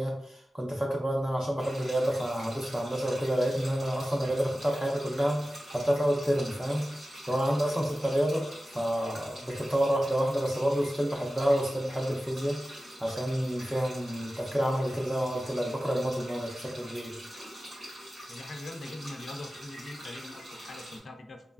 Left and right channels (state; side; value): normal; both; correlation 0.95